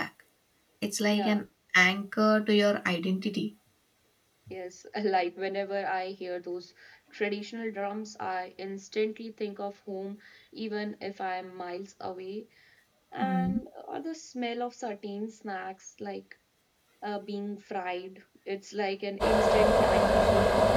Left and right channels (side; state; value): both; identical; correlation 1.00